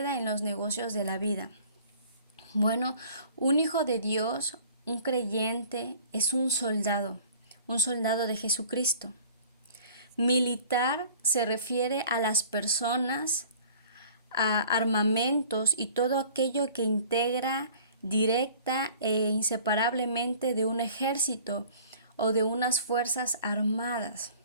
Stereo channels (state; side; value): inverted; both; correlation -0.49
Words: en los negocios de la vida. Bueno, un hijo de Dios, un creyente, es un soldado de Jesucristo. Militar se refiere a las personas, a armamentos y todo aquello que integra directa e inseparablemente de un ejército o de unas fuerzas armadas.